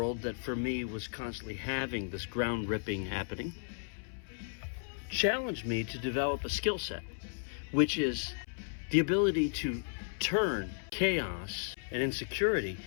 that for me was constantly having this ground ripping happening challenged me to develop a skill set, which is the ability to turn chaos and insecurity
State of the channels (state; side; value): silent; right; 55 dB below the other